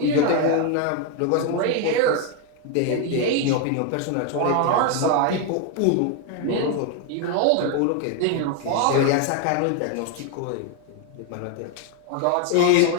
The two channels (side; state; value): both; different; correlation 0.01